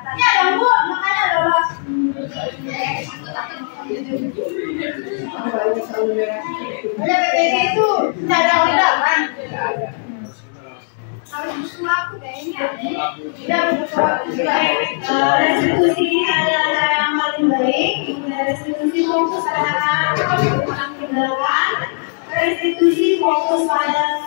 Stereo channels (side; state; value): right; silent; digital silence